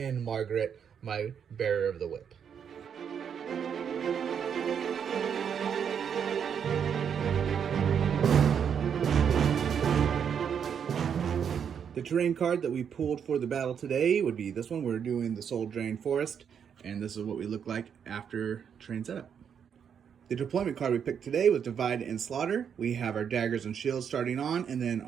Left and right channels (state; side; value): quieter; left; 7.7 dB